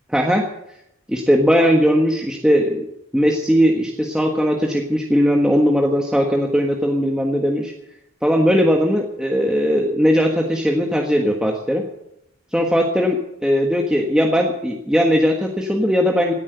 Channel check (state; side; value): normal; both; correlation 0.83